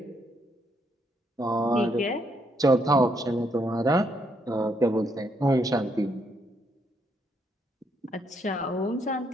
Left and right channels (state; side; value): normal; both; correlation 0.74